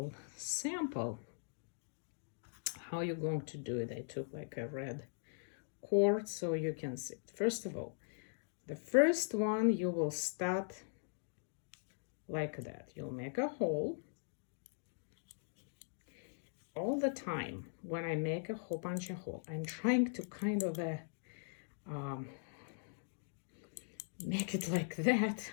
sample how you're going to do it. I took like a red cord so you can see it. First of all, the first one you will start like that. You'll make a hole. All the time when I make a whole bunch of hole, I'm trying to kind of make it like that,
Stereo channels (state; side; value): silent; right; digital silence